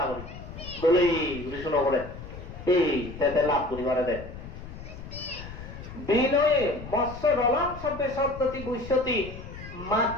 আগরি বলে শুনো করে এই তাতে লাভ করিবারে দে বিনয়ে মৎস্য রলাম শব্দে শব্দটি বুঝতি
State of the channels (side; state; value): left; noise; rumble, 12 dB below the sound